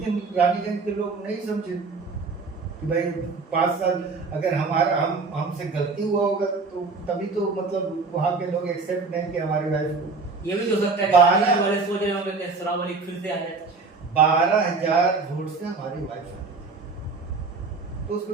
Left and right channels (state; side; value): quieter; left; 4.2 dB